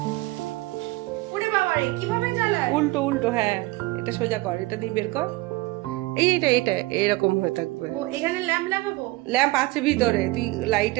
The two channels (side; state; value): left; quieter; 20.9 dB